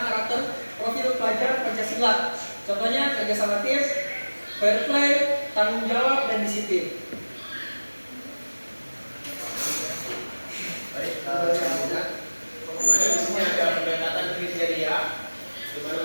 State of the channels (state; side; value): inverted; both; correlation -1.00